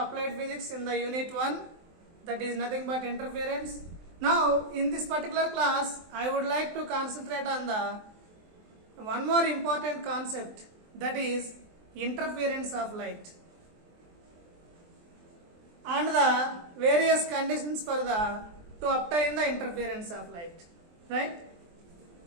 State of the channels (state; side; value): late; left; 23 ms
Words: physics in the unit 1, that is nothing but interference. Now, in this particular class, I would like to concentrate on the one more important concept, that is interference of light and the various conditions for to obtain the interference of light, right?